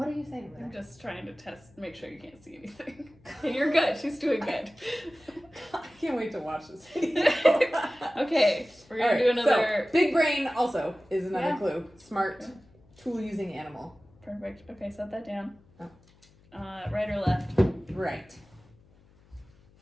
are you saying there? I'm just trying to make sure you can't see anything. And you're good. She's doing good. I can't wait to watch this video. Okay, we're going to do another... So, big brain also is another clue. Smart, yeah. tool-using animal. Perfect. Okay, set that down. Oh. Right or left? Right.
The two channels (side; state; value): left; noise; hum, 29 dB below the sound